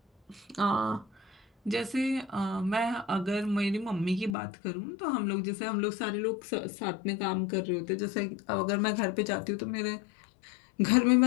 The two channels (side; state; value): right; drops out; at 4.4 s